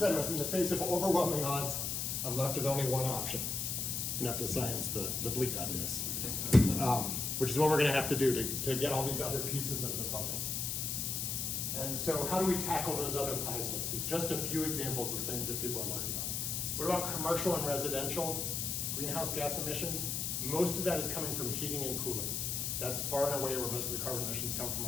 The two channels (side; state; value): left; noise; hiss, 1 dB below the sound